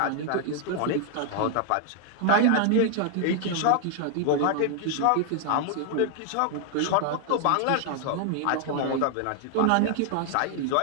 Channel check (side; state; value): both; different; correlation 0.00